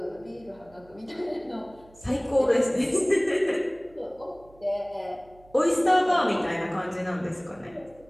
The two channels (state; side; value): noise; right; hum, 26 dB below the sound